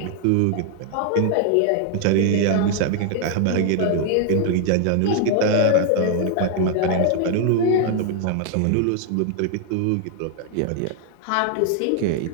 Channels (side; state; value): both; different; correlation 0.00